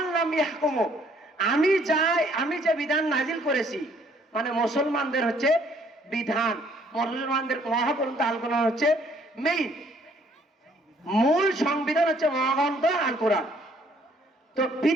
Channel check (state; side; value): normal; both; correlation 0.63